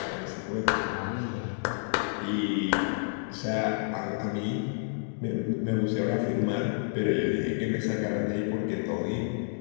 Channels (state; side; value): silent; right; digital silence